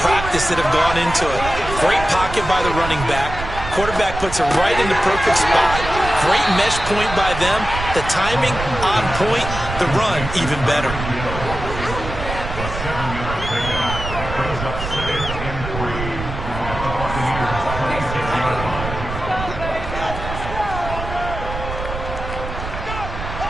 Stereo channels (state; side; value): noise; right; rumble, 7 dB below the sound